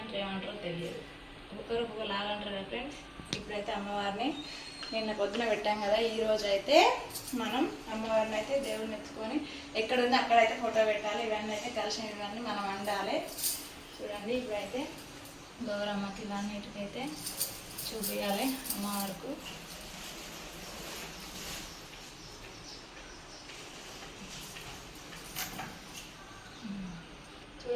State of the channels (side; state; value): both; identical; correlation 1.00